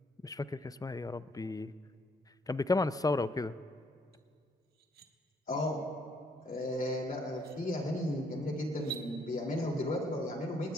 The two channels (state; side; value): normal; both; correlation 0.68